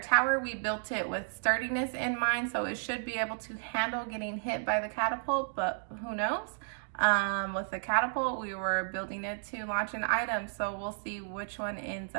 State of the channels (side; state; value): left; silent; digital silence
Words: tower, we built it with sturdiness in mind, so it should be able to handle getting hit by the catapult, but who knows? With the catapult, we were building it to launch an item, so we'll see which one ends